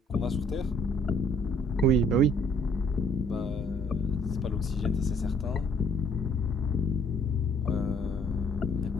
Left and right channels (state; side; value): normal; both; correlation 0.61